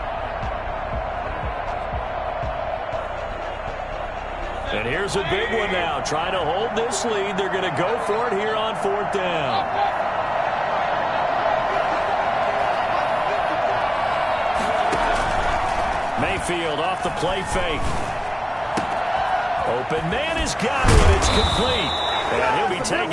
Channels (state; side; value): identical; both; correlation 1.00